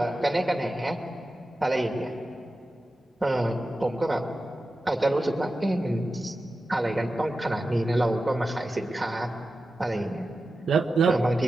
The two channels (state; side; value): normal; both; correlation 0.93